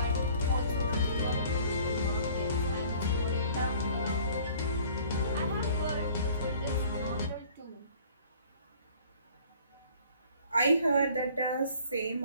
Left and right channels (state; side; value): inverted; both; correlation -0.53